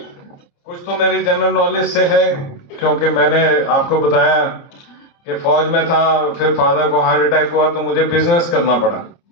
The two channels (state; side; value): late; right; 29 ms